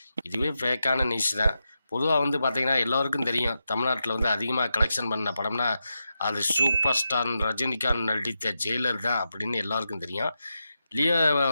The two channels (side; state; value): both; inverted; correlation -0.88